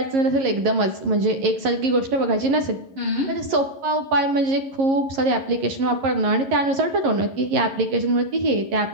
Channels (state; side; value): late; left; 11 ms